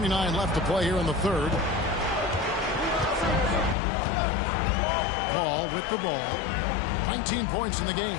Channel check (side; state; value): right; drops out; at 3.8 s